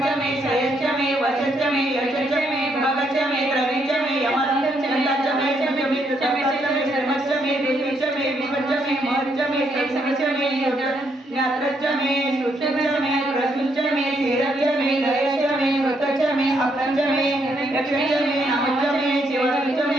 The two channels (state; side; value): normal; both; correlation 0.74